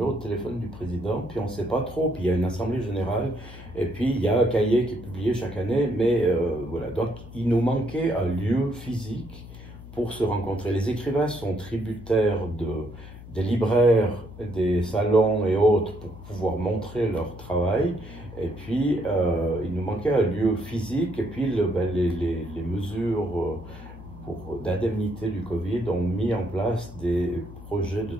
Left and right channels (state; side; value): noise; left; hum, 15 dB below the sound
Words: de téléphone du président, puis on ne sait pas trop, puis il y a une assemblée générale, et puis il y a un cahier qui est publié chaque année, mais voilà, donc il nous manquait un lieu physique pour se rencontrer. Les écrivains sont tributaires des libraires, des salons et autres pour pouvoir montrer leur travail. Et puis, il nous manquait un lieu physique. Et puis, les mesures d'indemnité du Covid ont mis en place des projets de